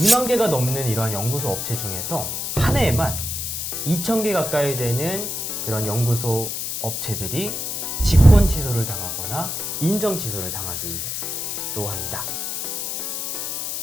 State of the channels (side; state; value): left; noise; hiss, 3 dB below the sound